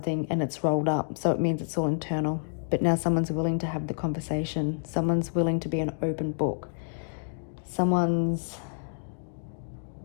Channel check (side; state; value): right; silent; digital silence